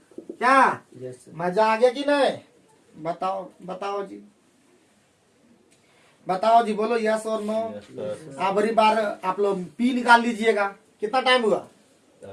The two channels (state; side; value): identical; both; correlation 1.00